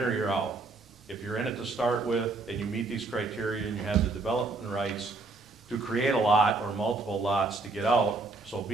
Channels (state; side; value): quieter; left; 3.6 dB